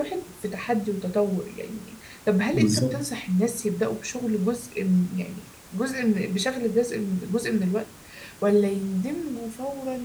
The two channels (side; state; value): both; identical; correlation 1.00